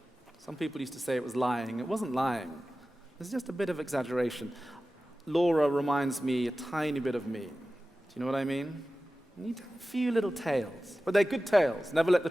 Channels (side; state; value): both; normal; correlation 0.95